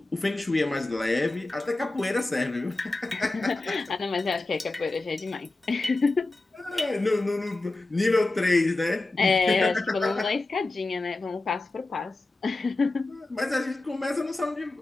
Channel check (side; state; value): right; quieter; 3.1 dB